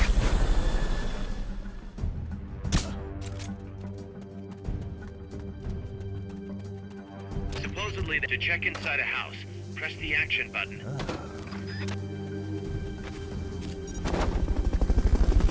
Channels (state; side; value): identical; both; correlation 1.00